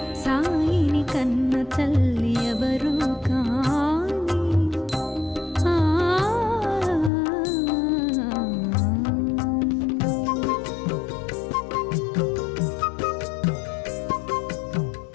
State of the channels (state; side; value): drops out; right; at 7.1 s